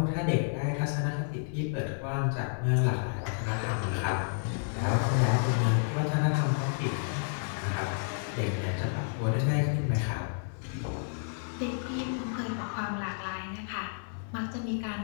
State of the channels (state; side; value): silent; right; 57 dB below the other